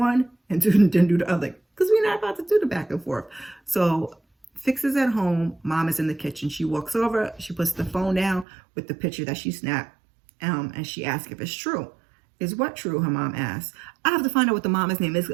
and then do the other because we're not about to do the back and forth. So Fiks is at home. Mom is in the kitchen. She walks over. She puts the phone down with the picture that she snapped and she asks if it's true. Is what true? Her mom asks. I have to find out what the mom's name is.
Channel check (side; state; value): left; drops out; at 8.5 s